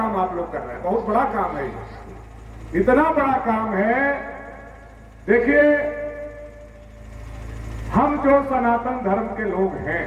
आप लोग कर रहे हैं। बहुत बड़ा काम है, इतना बड़ा काम है। देखिए, हम जो सनातन धर्म के लोग हैं,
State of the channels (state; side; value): identical; both; correlation 1.00